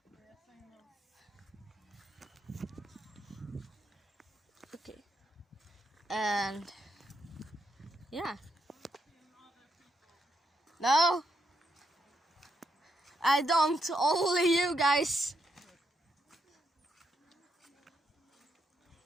Okay, and yeah. No, I don't. Only you guys.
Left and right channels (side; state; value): both; normal; correlation 0.79